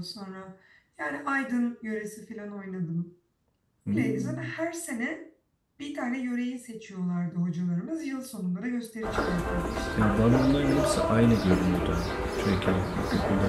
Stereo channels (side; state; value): both; identical; correlation 1.00